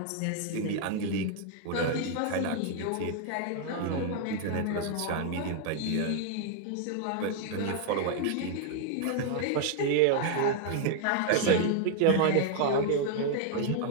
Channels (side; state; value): both; different; correlation 0.00